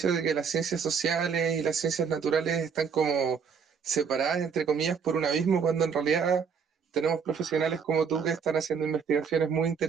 de que las ciencias sociales y las ciencias naturales están como separadas, entre comillas, por un abismo, cuando en realidad tenemos profesionales como tú que están haciendo investigaciones muy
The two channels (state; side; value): quieter; left; 6.3 dB